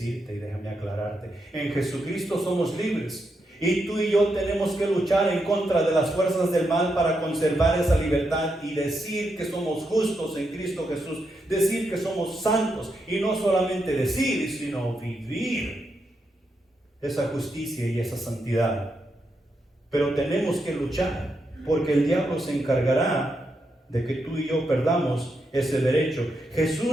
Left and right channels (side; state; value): both; normal; correlation 0.83